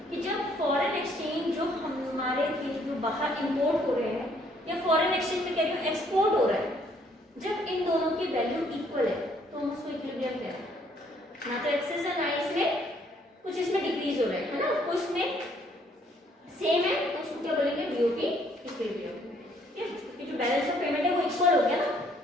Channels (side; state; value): both; normal; correlation 0.65